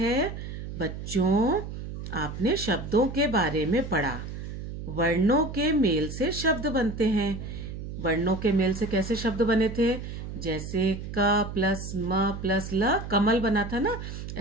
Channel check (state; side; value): noise; right; hum, 8 dB below the sound